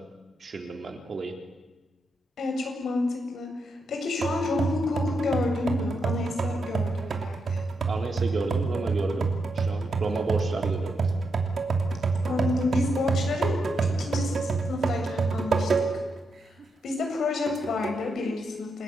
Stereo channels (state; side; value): normal; both; correlation 0.83